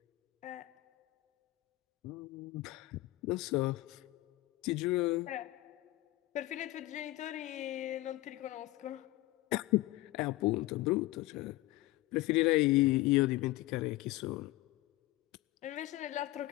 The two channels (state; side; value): quieter; right; 18.4 dB